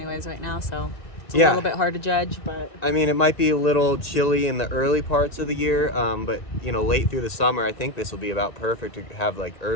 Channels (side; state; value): right; late; 1.8 ms